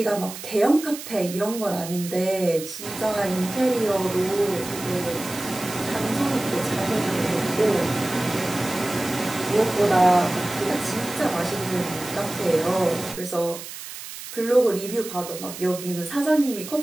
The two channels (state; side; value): noise; right; hiss, 11 dB below the sound